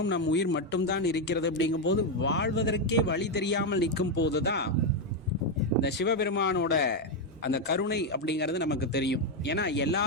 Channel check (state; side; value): normal; both; correlation 0.04